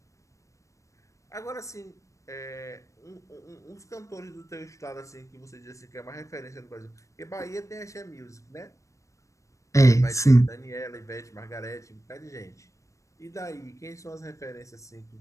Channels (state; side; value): late; right; 0.15 ms